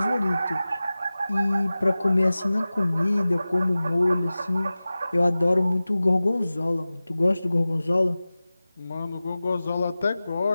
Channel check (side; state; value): both; inverted; correlation -0.97